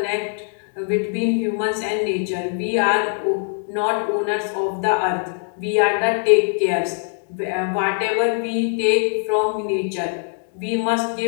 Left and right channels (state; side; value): silent; right; 56 dB below the other